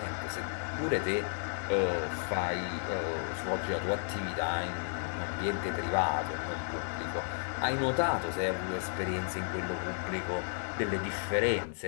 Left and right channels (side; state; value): right; silent; digital silence